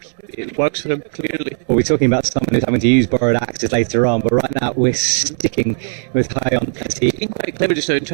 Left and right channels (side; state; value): left; silent; digital silence